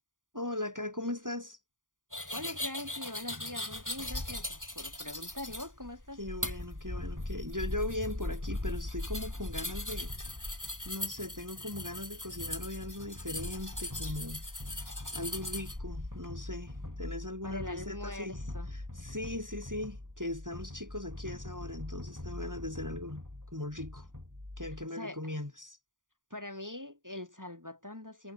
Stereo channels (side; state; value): left; late; 0.89 ms